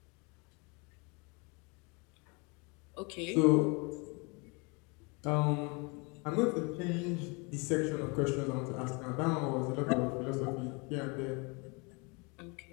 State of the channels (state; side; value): quieter; right; 30.5 dB